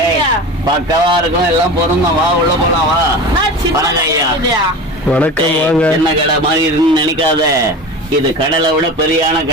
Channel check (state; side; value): normal; both; correlation 0.31